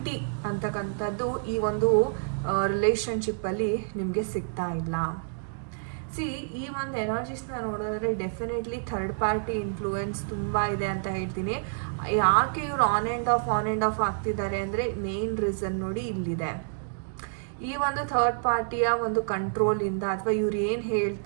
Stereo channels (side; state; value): left; silent; digital silence